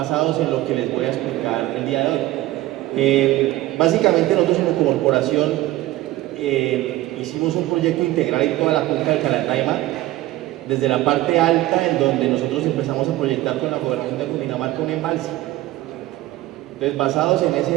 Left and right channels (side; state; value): left; quieter; 16.5 dB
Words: en lo que les voy a explicar el día de hoy. Básicamente nosotros como corporación hicimos un proyecto integral en toda la cuenca del Carandaima, desde la parte alta, en donde nosotros empezamos a proyectar con la Gobernación de Cundinamarca un embalse. Entonces, basados